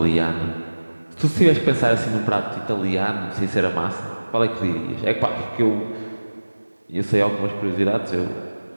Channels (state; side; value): inverted; both; correlation -1.00